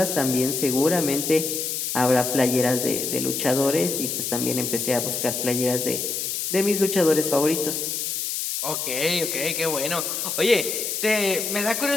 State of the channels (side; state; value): left; noise; hiss, 2 dB below the sound